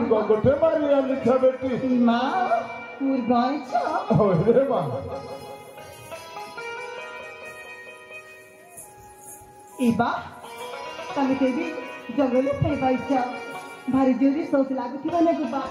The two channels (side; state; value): both; identical; correlation 1.00